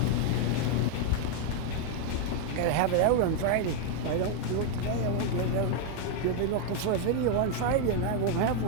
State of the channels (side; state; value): both; different; correlation 0.00